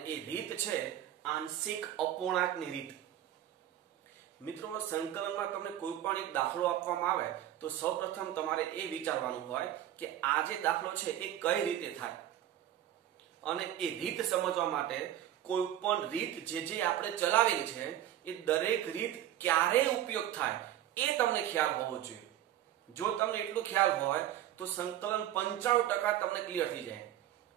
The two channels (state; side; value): quieter; left; 12.0 dB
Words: એ રીત છે આંશિક અપૂર્ણાંકની રીત. મિત્રો, સંકલનમાં તમને કોઈ પણ એક દાખલો આપવામાં આવે તો સૌપ્રથમ તમારે એ વિચારવાનું હોય કે આ જે દાખલો છે એ કઈ રીતે થાય, અને એ રીત સમજવા માટે કોઈ પણ રીત જે આપણે ચલાવેલી છે એ દરેક રીત ક્યારે ઉપયોગ થાય એ તમને ખ્યાલ હોવો જોઈએ. જો તમને એટલો ખ્યાલ હોય તો સંકલન 95% તમને ક્લિયર થઈ જાય.